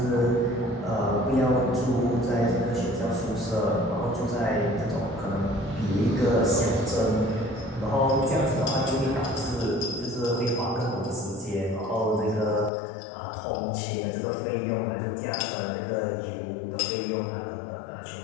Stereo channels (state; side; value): drops out; right; at 12.7 s